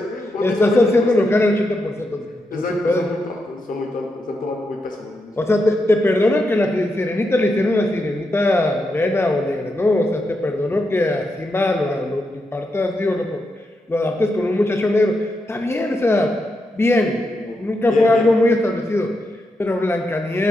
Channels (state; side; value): normal; both; correlation 0.85